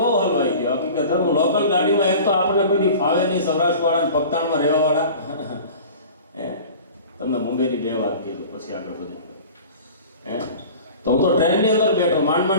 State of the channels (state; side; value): inverted; both; correlation -0.40